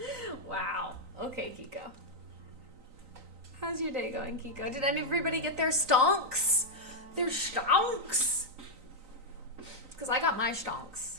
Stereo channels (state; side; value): late; left; 3.9 ms